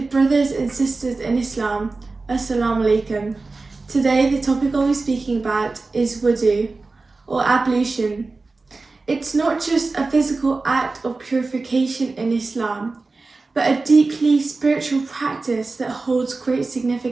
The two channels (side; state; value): left; quieter; 3.7 dB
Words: brothers and sisters in Islam, Assalamu alaikum. Today the topic I'll be speaking about is wudu, or ablution. It's not just a physical act of purification in Islam, but a deeply spiritual practice that holds great